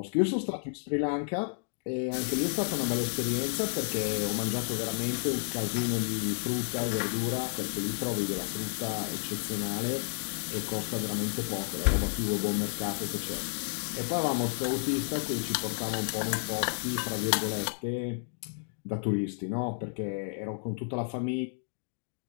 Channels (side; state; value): right; silent; digital silence